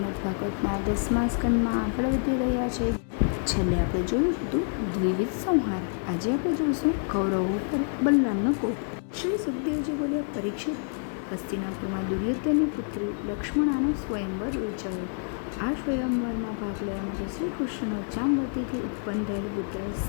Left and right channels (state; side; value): silent; right; 60 dB below the other